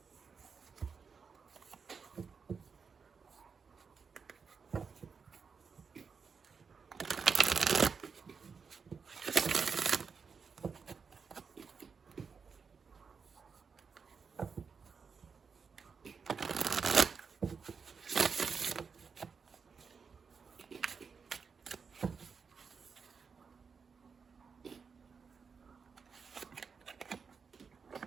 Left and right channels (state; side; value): quieter; left; 5.6 dB